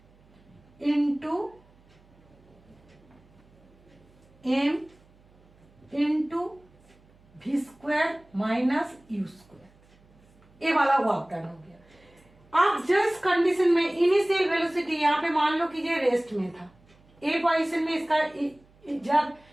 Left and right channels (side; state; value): right; noise; hum, 29 dB below the sound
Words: into m into v square minus u square. ये वाला वर्क डन हो गया। अब जस्ट कंडीशन में इनिशियल वेलोसिटी यहाँ पे मान लो कि ये रेस्ट में था, ए पोजीशन में इसका जब